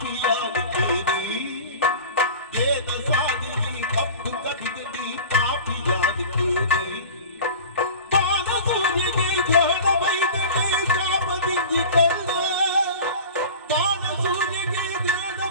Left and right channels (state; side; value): inverted; both; correlation -0.36